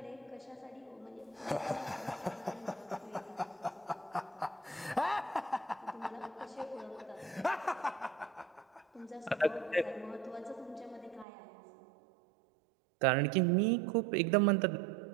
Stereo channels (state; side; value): drops out; left; at 11.2 s